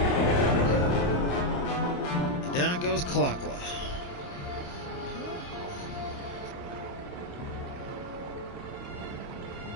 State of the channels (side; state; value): right; late; 28 ms